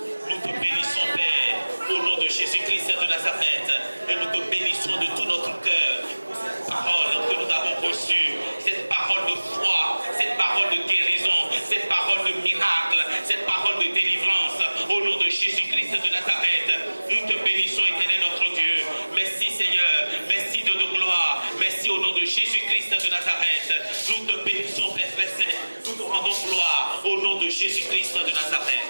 nous te bénissons, Père, au nom de Jésus-Christ de Nazareth, et nous te bénissons de tout notre cœur pour cette parole que nous avons reçue, cette parole de foi, cette parole de guérison, cette parole de miracle, cette parole de délivrance, au nom de Jésus-Christ de Nazareth. Nous te bénissons, Éternel notre Dieu. Merci Seigneur, merci de nos gloires, merci au nom de Jésus-Christ de Nazareth. Nous te bénissons, Père Saint, nous te rendons gloire au nom de Jésus-Christ de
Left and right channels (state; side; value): inverted; both; correlation -1.00